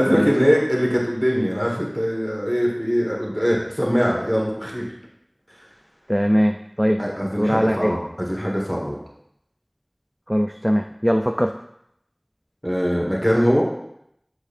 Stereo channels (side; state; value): both; identical; correlation 1.00